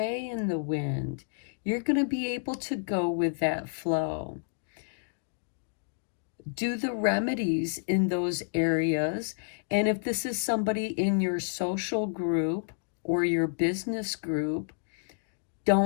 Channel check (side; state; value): right; silent; digital silence